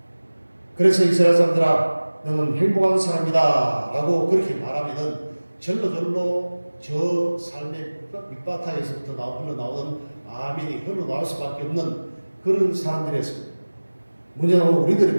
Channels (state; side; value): inverted; both; correlation -1.00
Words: 그래서 이스라엘 사람들아 너는 행복한 사람이다 라고 그렇게 말하면은 절로 저 삶의 밑바탕에서부터 흘러나오는 아멘이 흘러나올 수밖에 없는 그런 사람들이었습니다. 문제는